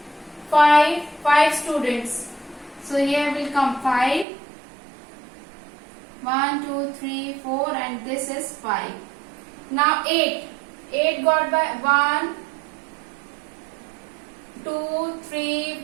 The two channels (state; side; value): drops out; left; at 4.2 s